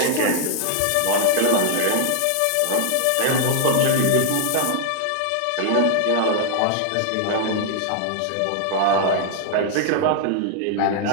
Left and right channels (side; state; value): both; different; correlation 0.00